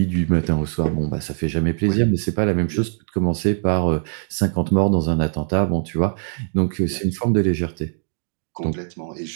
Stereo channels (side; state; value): left; silent; digital silence